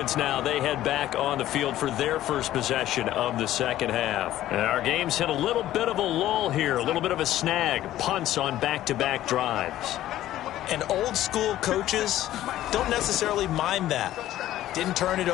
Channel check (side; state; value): right; quieter; 13.6 dB